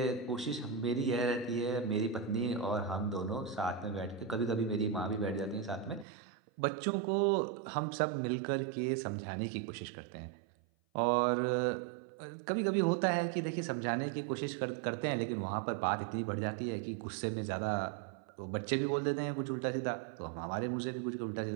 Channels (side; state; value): left; drops out; at 6.1 s